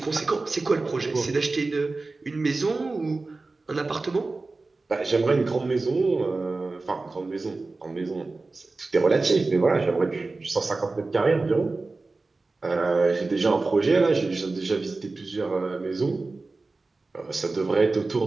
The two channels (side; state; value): left; quieter; 3.5 dB